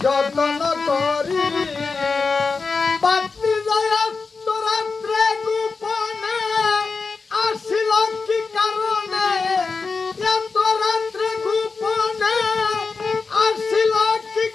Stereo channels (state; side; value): quieter; right; 4.5 dB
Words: যত্ন করি বাতি যায় রাত্রে গোপনে আসিল কি কারণে এত রাত্রে গোপনে আসিল কি